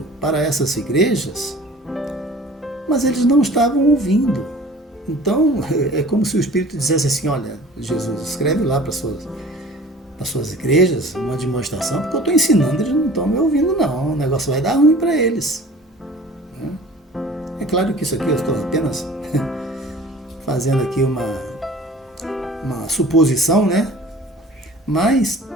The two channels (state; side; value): normal; both; correlation 0.45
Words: para essas igrejas, mas eles não estavam ouvindo. Então, é como se o Espírito dissesse assim: olha, Jesus, escreve lá para as suas igrejas uma demonstração, porque eu estou ensinando, eles não estão me ouvindo não, o negócio vai dar ruim para eles. É claro que isso aqui eu estou apenas fazendo aqui uma suposição, né? Mas